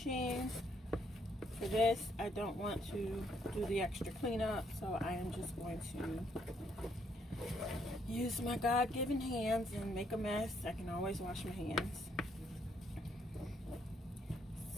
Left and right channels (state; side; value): normal; both; correlation 0.71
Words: For this, I don't want to do the extra cleanup, so I am just going to use my God-given hands and make a mess. I can always wash my hands.